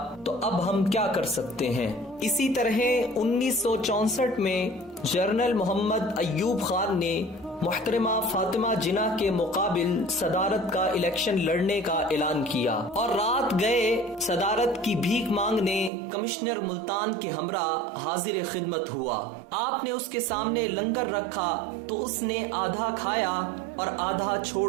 تو اب ہم کیا کر سکتے ہیں۔ اسی طرح 1964 میں جنرل محمد ایوب خان نے محترمہ فاطمہ جناح کے مقابل صدارت کا الیکشن لڑنے کا اعلان کیا اور رات گئے صدارت کی بھیک مانگنے کمشنر ملتان کے ہمراہ حاضر خدمت ہوا۔ آپ نے اس کے سامنے لنگر رکھا تو اس نے آدھا کھایا اور آدھا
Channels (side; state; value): left; drops out; at 15.9 s